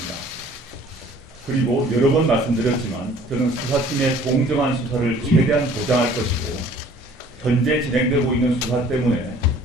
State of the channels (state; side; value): normal; both; correlation 0.53